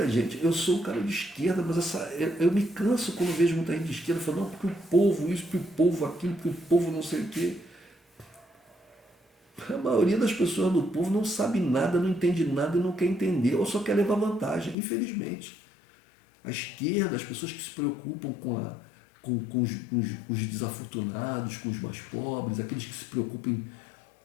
gente, eu sou um cara de esquerda, mas eu me canso quando vejo muita gente de esquerda falando, não, porque o povo isso, porque o povo aquilo, porque o povo não sei o quê. A maioria das pessoas do povo não sabe nada, não entende nada e não quer entender, ou só quer levar vantagem, infelizmente. A esquerda, as pessoas que se preocupam com os desafortunados, com os mais pobres, aqueles que se preocupam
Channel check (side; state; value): right; drops out; at 14.8 s